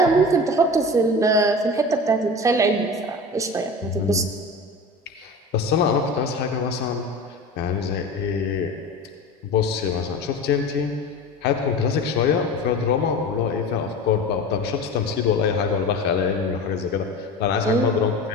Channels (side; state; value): both; normal; correlation 0.32